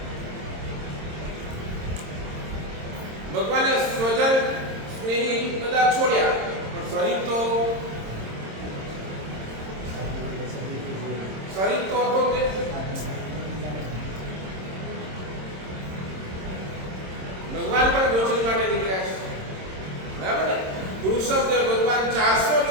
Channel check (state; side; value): late; left; 26 ms